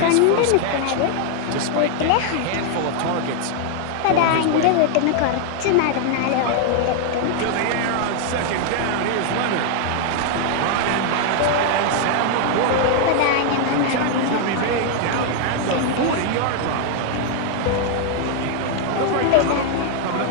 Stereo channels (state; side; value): different; both; correlation 0.00